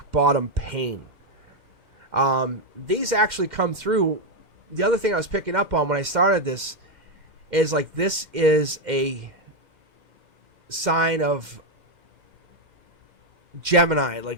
bottom pain. These actually come through. The other thing I was picking up on when I started this is like this is a sign of Gemini,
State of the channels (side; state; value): left; late; 2.1 ms